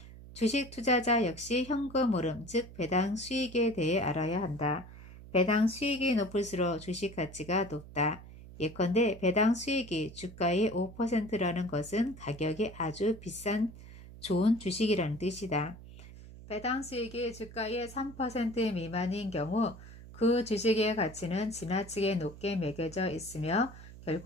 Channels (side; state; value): right; noise; hum, 16 dB below the sound